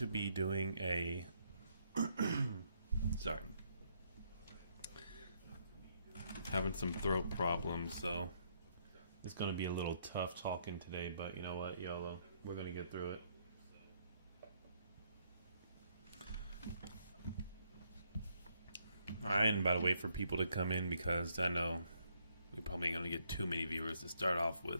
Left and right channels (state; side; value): inverted; both; correlation -0.72